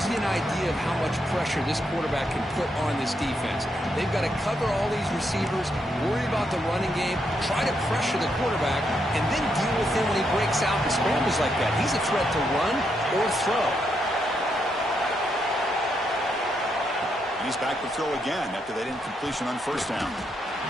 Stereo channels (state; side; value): normal; both; correlation 0.79